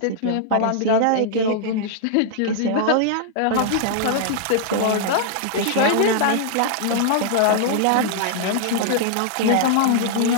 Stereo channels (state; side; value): different; both; correlation -0.01